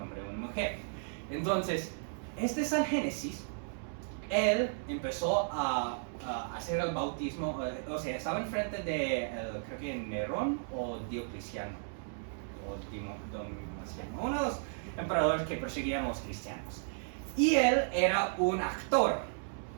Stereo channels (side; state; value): left; silent; 55 dB below the other